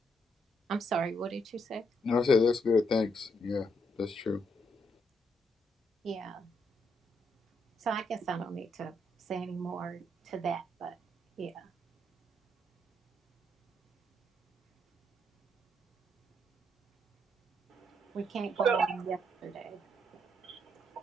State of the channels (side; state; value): both; normal; correlation 0.76